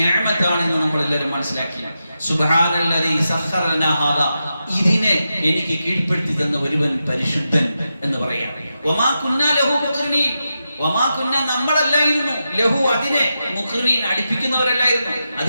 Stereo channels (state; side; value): inverted; both; correlation -0.89